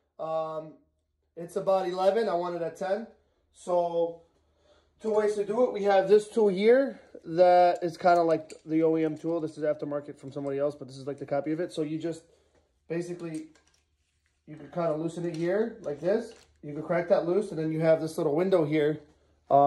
It's about 11. I want it at 10. So 2 ways to do it. We have this tool here that is kind of like the OEM tool. This is aftermarket from somebody else, but this is like the copy of it. So you just basically, you can kind of loosen it here like this. You can crack that loose, and then you have this little window here.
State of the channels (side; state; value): both; identical; correlation 1.00